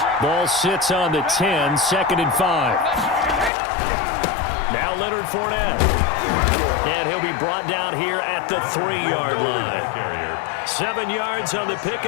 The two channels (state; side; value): drops out; right; at 3.5 s